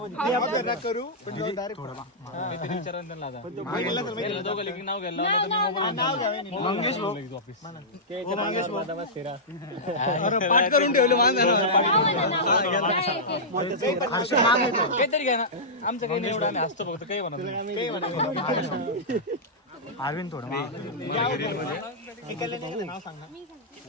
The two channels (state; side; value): normal; both; correlation -0.13